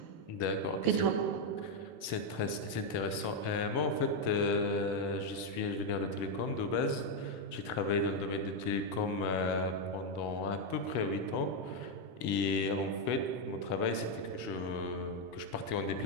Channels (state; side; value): late; left; 1.7 ms